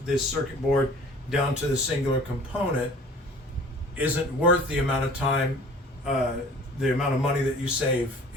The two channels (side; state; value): both; normal; correlation 0.48